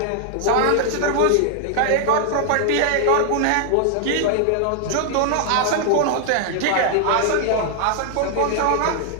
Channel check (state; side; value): different; both; correlation 0.00